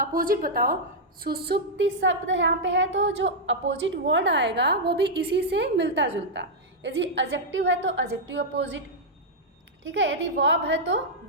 बताओ। सुषुप्ति शब्द यहाँ पे है, तो जो अपोजिट वर्ड आएगा वो भी इसी से मिलता जुलता। यदि एडजेक्टिव है तो एडजेक्टिव अपोजिट, ठीक है। यदि वर्ब है तो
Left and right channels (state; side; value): normal; both; correlation -0.05